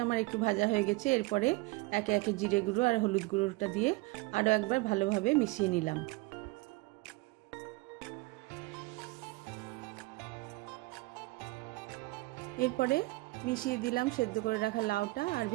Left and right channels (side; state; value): left; quieter; 22.6 dB